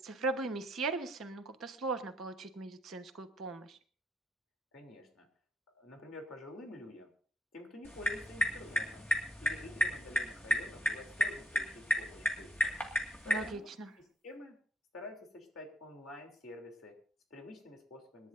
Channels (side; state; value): both; normal; correlation 0.66